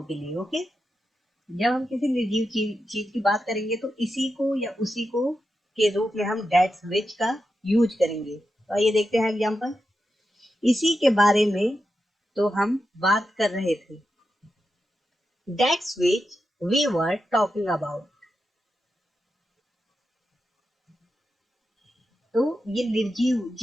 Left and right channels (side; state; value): both; normal; correlation 0.88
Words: के लिए, ओके। जब हम किसी निर्जीव चीज की बात करेंगे तो इसी को या उसी को के रूप में हम दैट्स विच का यूज करेंगे। तो आइए देखते हैं एग्जांपल। इसी के बारे में तो हम बात कर रहे थे। That's which we were talking about. तो ये निर्जीव